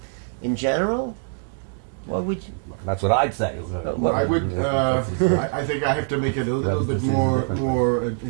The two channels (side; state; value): left; silent; digital silence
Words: general? What would you? That's what I'd say. Well, I would. I think I have to make it a little bit more